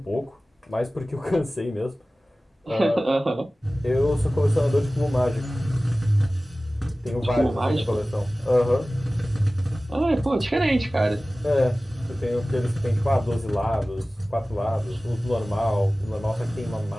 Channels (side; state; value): both; normal; correlation 0.97